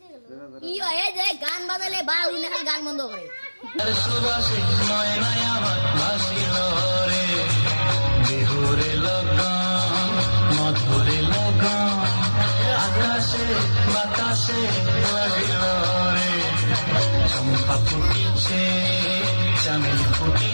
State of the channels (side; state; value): both; inverted; correlation -1.00